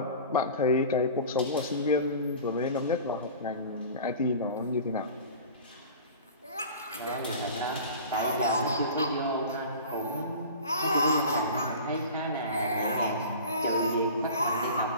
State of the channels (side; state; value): both; inverted; correlation -0.38